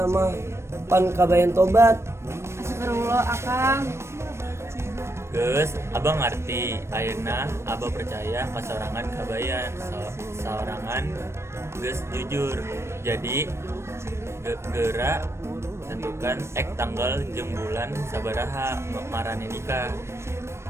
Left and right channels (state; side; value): late; left; 0.13 ms